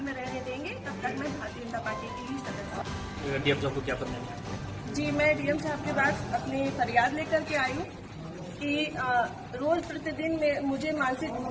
में रहने देंगे, तब तक मैं भारतीय जनता पार्टी की ही सदस्य हूँ। डीएम साहब को क्या करना है? जी, मैं डीएम साहब के पास अपनी फरियाद लेकर के आई हूँ कि रोज प्रतिदिन मुझे मानसिक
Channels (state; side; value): identical; both; correlation 1.00